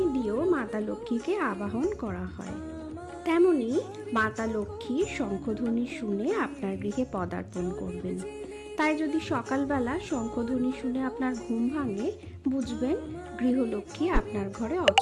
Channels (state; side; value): identical; both; correlation 1.00